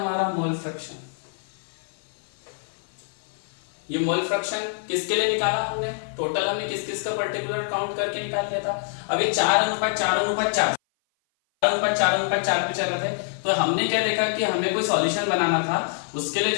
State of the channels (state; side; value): silent; right; 56 dB below the other